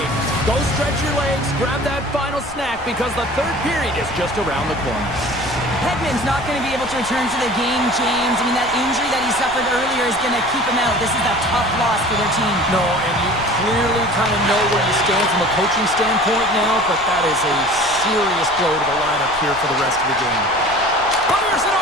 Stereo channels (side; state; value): left; noise; rumble, 19 dB below the sound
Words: Go stretch your legs, grab that final snack, because the third period is just around the corner. Hedman's not going to be able to return to the game, James. I mean, that injury that he suffered earlier is going to keep him out. This is a tough loss for their team. No, and you clearly kind of know where you stand from a coaching standpoint now, but that is a serious blow to the lineup here for the rest of the game. Fires it